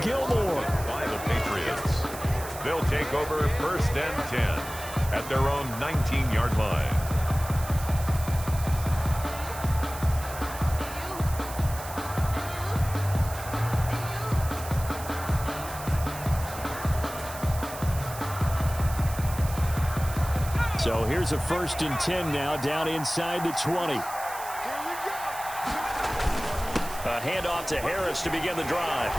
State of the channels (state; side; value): noise; right; hiss, 12 dB below the sound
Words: Gilmore. By the Patriots. They'll take over 1st and 10 at their own 19-yard line. So here's a 1st and 10 now down inside the 20. A handoff to Harris to begin the drive.